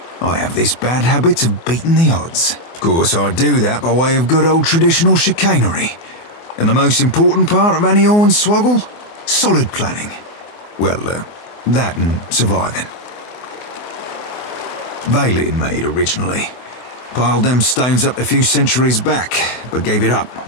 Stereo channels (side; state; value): right; late; 24 ms